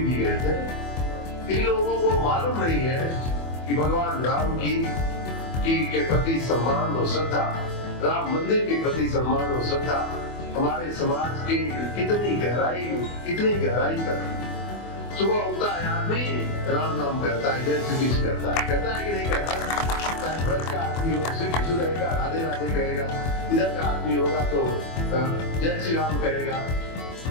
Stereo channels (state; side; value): late; right; 24 ms